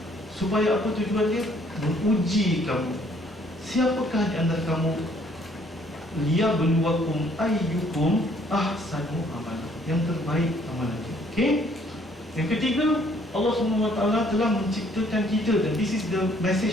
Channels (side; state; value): both; normal; correlation 0.63